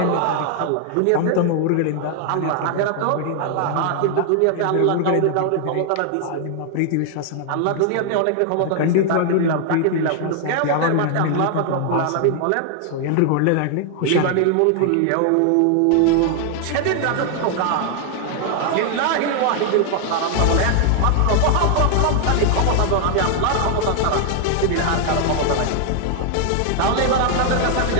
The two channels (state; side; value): different; both; correlation 0.00